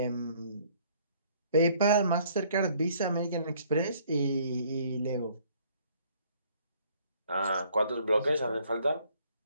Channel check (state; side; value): inverted; both; correlation -0.61